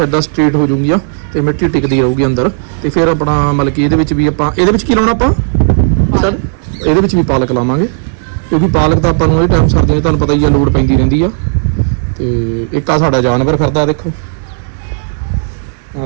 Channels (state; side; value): silent; left; digital silence